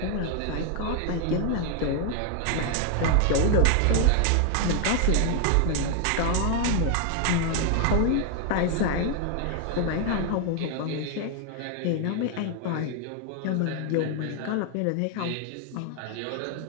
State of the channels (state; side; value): different; both; correlation 0.00